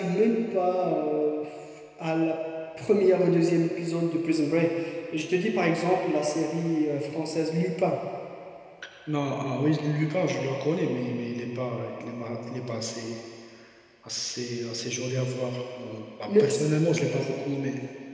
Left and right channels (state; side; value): identical; both; correlation 1.00